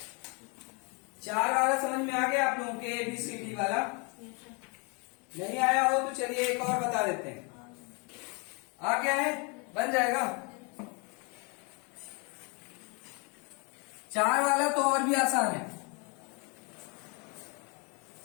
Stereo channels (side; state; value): right; quieter; 32.8 dB